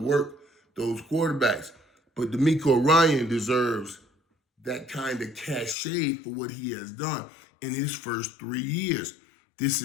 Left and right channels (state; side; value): drops out; right; at 5.8 s